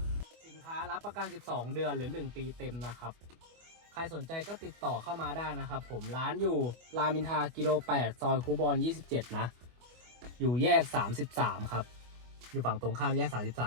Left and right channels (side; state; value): left; late; 25 ms